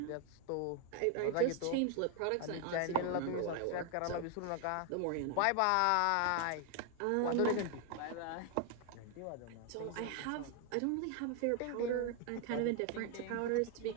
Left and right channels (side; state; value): both; different; correlation 0.01